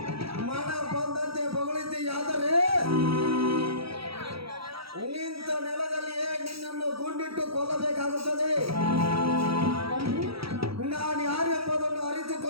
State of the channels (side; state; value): left; late; 0.76 ms